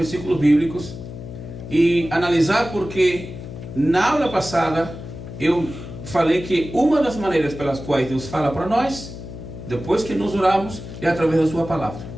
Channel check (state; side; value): noise; left; hum, 11 dB below the sound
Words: bíblicos e analisar, porque na aula passada eu falei que uma das maneiras pelas quais Deus fala para nós, depois que nos oramos, é através da sua palavra.